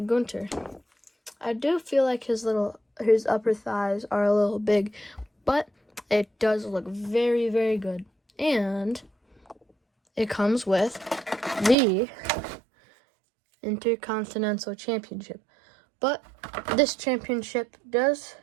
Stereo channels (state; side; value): drops out; left; at 11.8 s